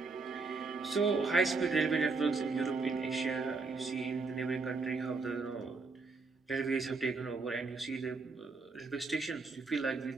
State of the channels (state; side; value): quieter; left; 4.1 dB